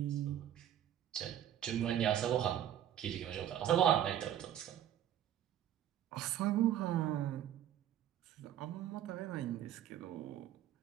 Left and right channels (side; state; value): left; quieter; 10.9 dB